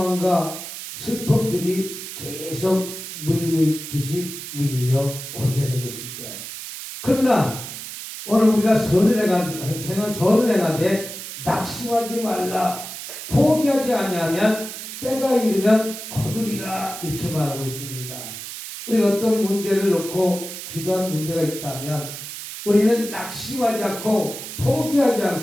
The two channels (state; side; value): noise; right; hiss, 9 dB below the sound